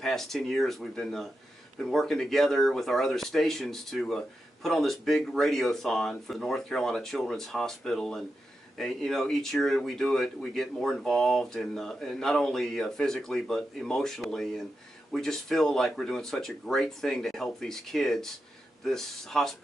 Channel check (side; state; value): both; normal; correlation 0.88